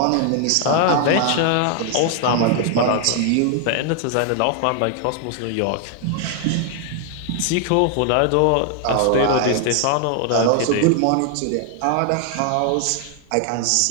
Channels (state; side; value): different; both; correlation 0.00